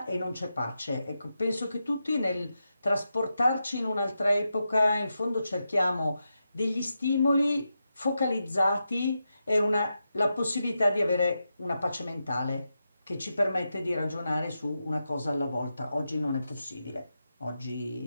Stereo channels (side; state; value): both; inverted; correlation -0.88